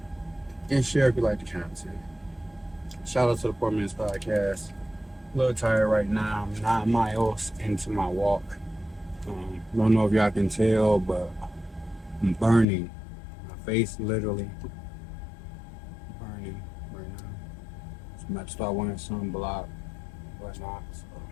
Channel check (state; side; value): drops out; right; at 12.7 s